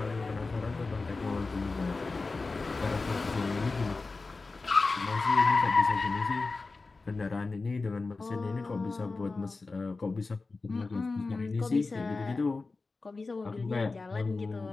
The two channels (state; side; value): quieter; right; 3.8 dB